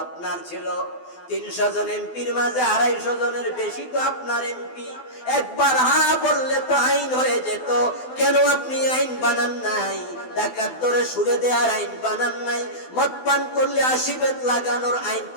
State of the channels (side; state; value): right; late; 12 ms